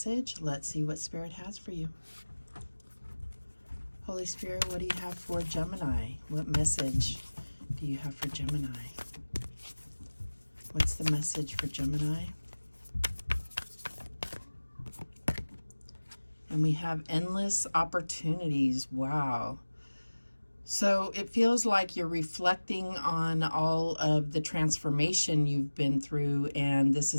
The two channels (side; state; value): both; inverted; correlation -1.00